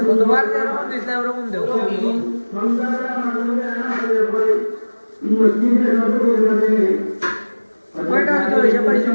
তোমার যেরকম দিছে ওরকম দেও কয়টা হইতো এসে পাইছো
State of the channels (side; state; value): both; inverted; correlation -1.00